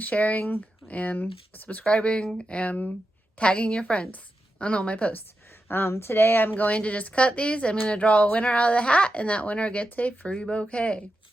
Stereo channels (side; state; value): both; normal; correlation 0.89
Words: sharing, and subscribing, and tagging your friends on all my posts. Today I'm going to just cut these. I'm going to draw a winner out of the hat, and that winner gets a free bouquet.